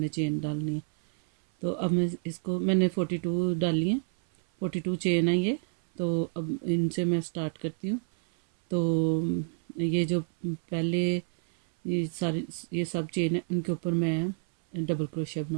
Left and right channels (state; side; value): silent; left; 59 dB below the other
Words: चेन डालनी है। तो अब मैं इसको मैंने 42 डाली हैं, 42 चेन है ये। तो अब इनसे मैं स्टार्ट करती हूँ। तो ये जो पहले ये सब चेन है, इनके ऊपर मैं डबल क्रोशिया